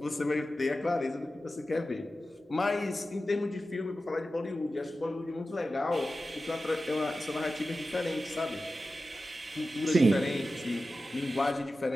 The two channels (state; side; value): normal; both; correlation 0.93